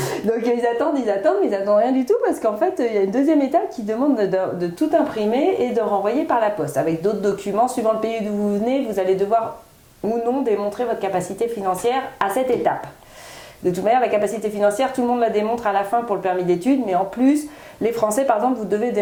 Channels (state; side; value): identical; both; correlation 1.00